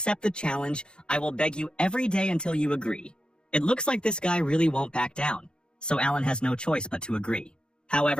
the challenge, I will beg you every day until you agree." It looks like this guy really won't back down, so Alan has no choice but to agree.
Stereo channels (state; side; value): late; right; 0.050 ms